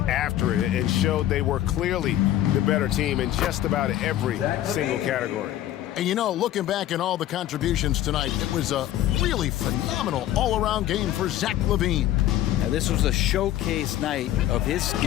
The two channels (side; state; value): right; quieter; 13.0 dB